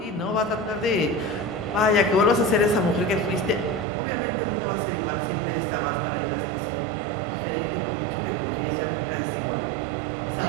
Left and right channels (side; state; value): left; drops out; at 3.9 s